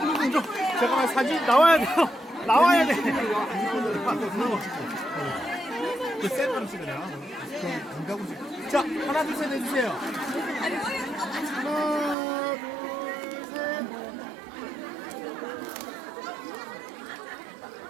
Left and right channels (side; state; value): left; drops out; at 12.2 s